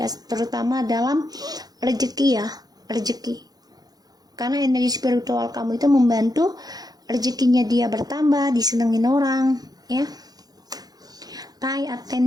terutama dalam rezeki ya, rezeki. Karena energi spiritual kamu itu membantu rezekinya dia bertambah, disenengin orang ya. Pay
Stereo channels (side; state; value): left; late; 0.19 ms